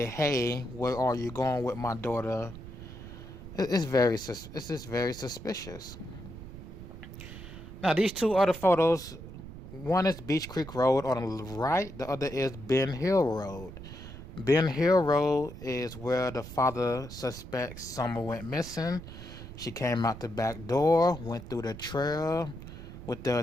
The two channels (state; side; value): noise; right; rumble, 13 dB below the sound